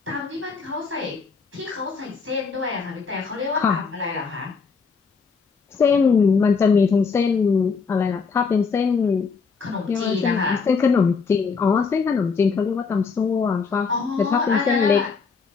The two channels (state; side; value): quieter; right; 5.2 dB